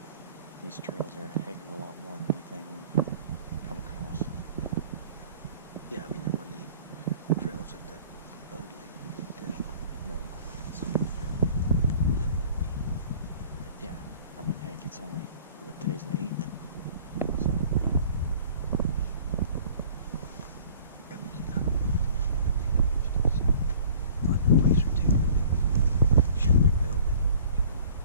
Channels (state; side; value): inverted; both; correlation -0.50